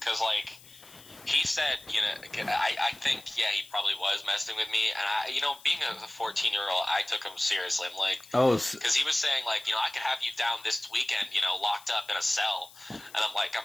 like he said, I think he probably was messing with me, and being a 14-year-old, I took him seriously. I'm like, because he was saying like, I could have you down this weekend, locked up in a cell, and I'm like,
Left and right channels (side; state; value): left; noise; hiss, 22 dB below the sound